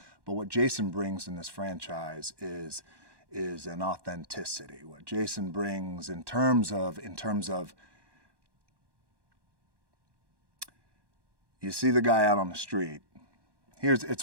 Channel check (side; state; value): left; late; 1.1 ms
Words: But what Jason brings in this franchise is an authenticity. What Jason brings in terms of you see the guy out on the street.